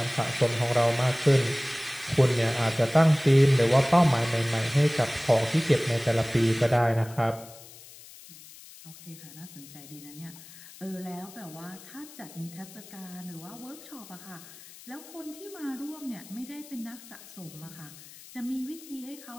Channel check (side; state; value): left; noise; hiss, 19 dB below the sound